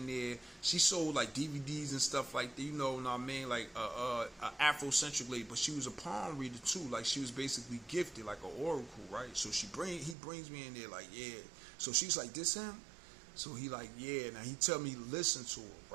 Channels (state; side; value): drops out; left; at 10.2 s